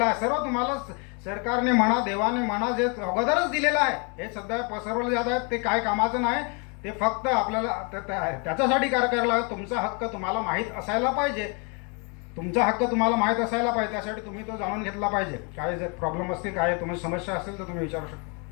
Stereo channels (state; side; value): quieter; right; 34.1 dB